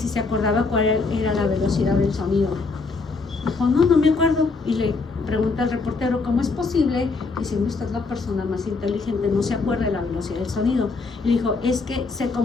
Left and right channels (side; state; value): right; quieter; 4.1 dB